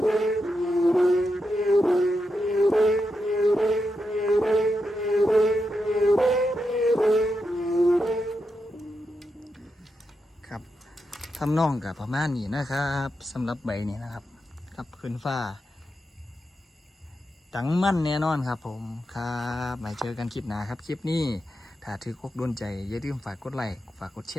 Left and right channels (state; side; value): normal; both; correlation 0.86